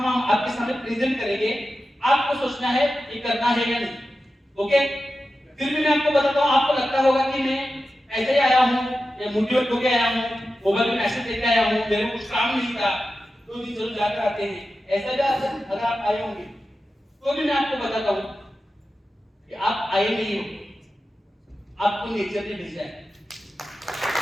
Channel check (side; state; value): both; normal; correlation 0.92